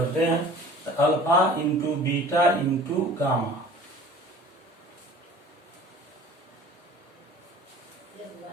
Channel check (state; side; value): normal; both; correlation 0.46